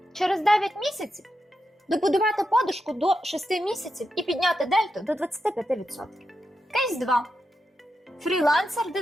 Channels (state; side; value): normal; both; correlation 0.87